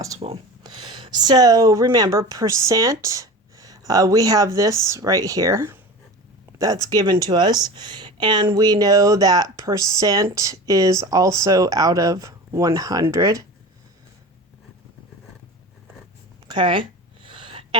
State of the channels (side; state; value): both; normal; correlation 0.33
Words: So remember, percent, we have this right here that's given to us. And we know that percent is also out of 100. Okay.